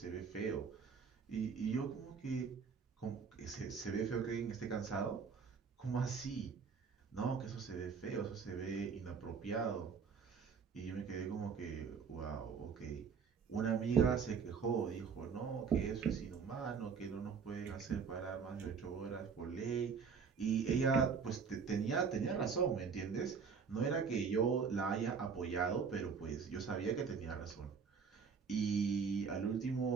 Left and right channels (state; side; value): quieter; left; 6.0 dB